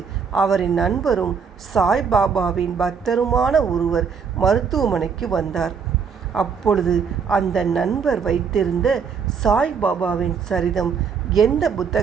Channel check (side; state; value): left; quieter; 6.2 dB